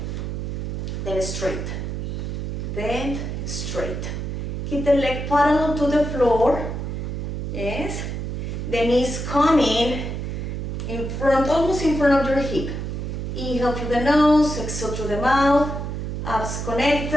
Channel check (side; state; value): right; noise; hum, 4 dB below the sound